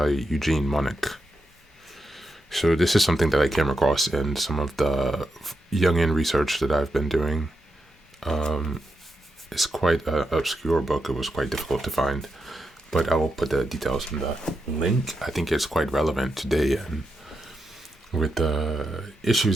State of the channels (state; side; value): normal; both; correlation 0.86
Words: Eugene Monich. So this is something that I came across in some of the Jungian research that I've been doing. It's quite an obscure book. It was quite difficult to find. But I will put the details in the link. I think it's quite relevant today and with the issues